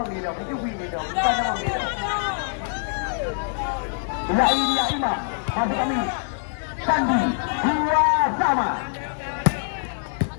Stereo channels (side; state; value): right; silent; 62 dB below the other